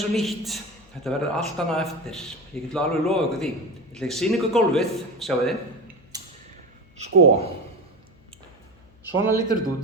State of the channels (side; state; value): left; noise; hum, 28 dB below the sound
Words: og nýtt. Þetta verður allt annað eftir. Ég get alveg lofa ykkur því. Ég ætla að sýna ykkur gólfið, sjáu þið. Sko. Svona lítur þetta út,